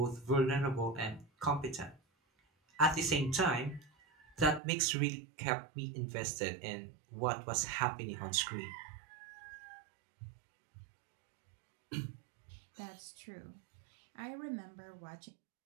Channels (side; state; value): left; drops out; at 4.6 s